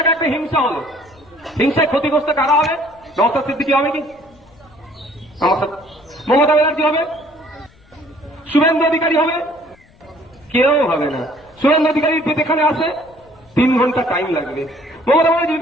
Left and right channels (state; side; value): noise; left; rumble, 29 dB below the sound